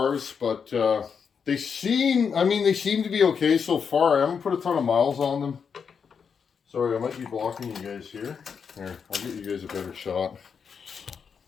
but they seem to be okay so far. I haven't put a ton of miles on them. Sorry, I might be blocking you guys here. Here, I'll get you guys a better shot.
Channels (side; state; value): right; quieter; 6.4 dB